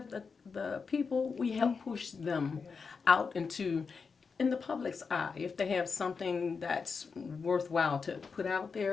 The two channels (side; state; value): right; quieter; 5.2 dB